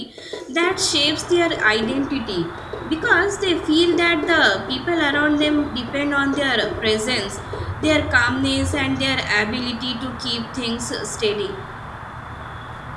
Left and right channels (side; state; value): both; identical; correlation 1.00